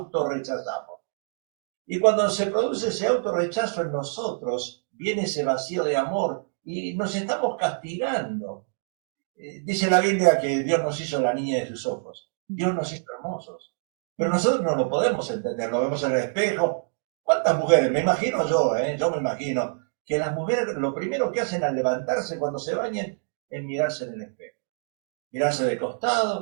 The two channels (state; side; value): silent; left; digital silence